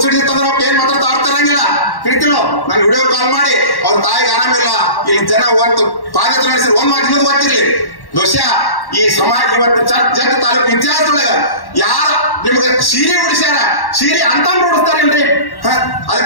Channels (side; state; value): right; late; 1.1 ms